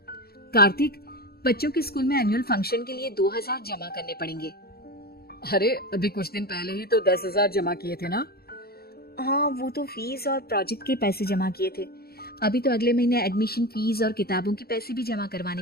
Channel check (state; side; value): late; right; 0.45 ms